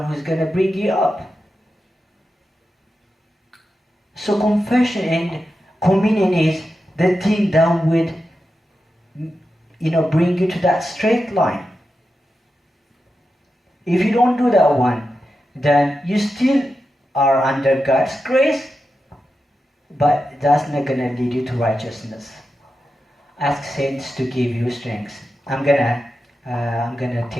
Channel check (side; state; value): both; normal; correlation 0.90